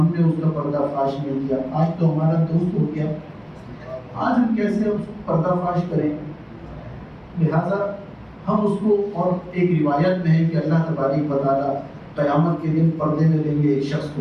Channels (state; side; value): identical; both; correlation 1.00